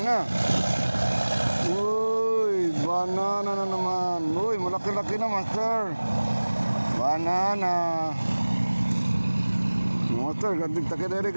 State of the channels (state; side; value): inverted; both; correlation -1.00